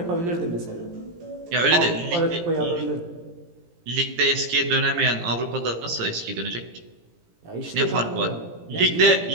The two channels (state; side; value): late; left; 17 ms